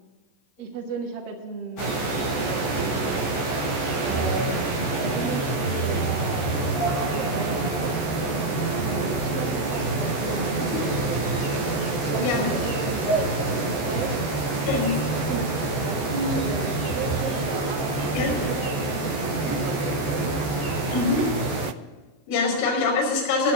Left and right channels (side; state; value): right; late; 14 ms